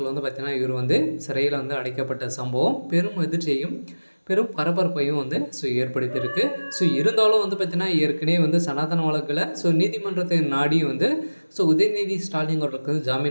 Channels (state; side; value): inverted; both; correlation -1.00